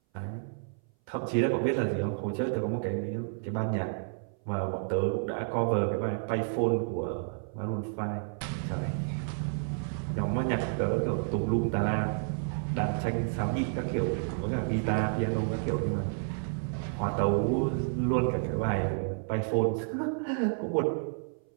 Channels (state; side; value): silent; left; 57 dB below the other